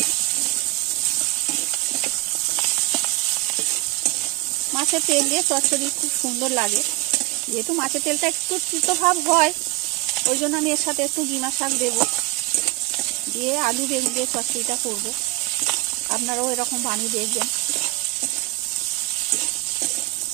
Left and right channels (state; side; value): quieter; left; 20.7 dB